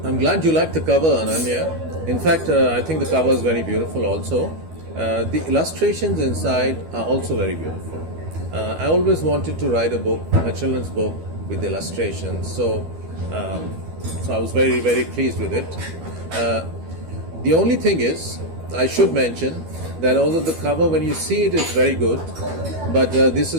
I'm glad you like the cover, Ananya. In fact, I think the cover is very beautiful also. The illustrations inside are also very beautiful. I always wanted to write a children's book with illustrations. So I was very, very pleased with it. The only thing is, I should mention that although the cover, when you see it, is very good, but this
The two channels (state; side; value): late; left; 12 ms